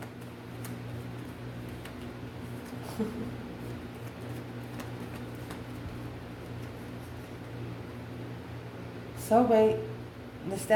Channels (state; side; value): identical; both; correlation 1.00